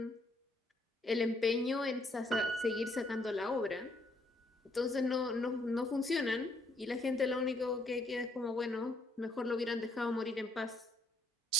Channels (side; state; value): both; normal; correlation 0.68